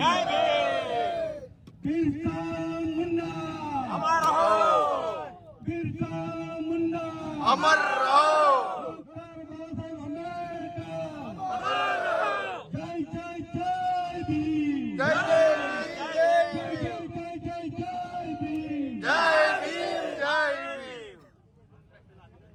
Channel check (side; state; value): both; identical; correlation 1.00